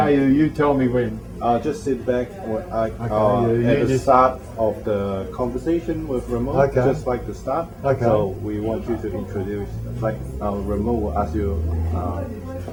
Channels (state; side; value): identical; both; correlation 1.00